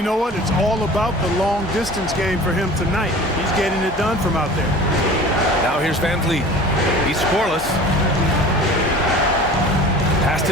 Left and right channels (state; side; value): normal; both; correlation 0.41